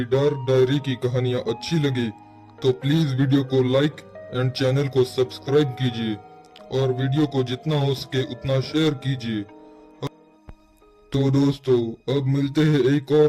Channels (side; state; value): both; identical; correlation 1.00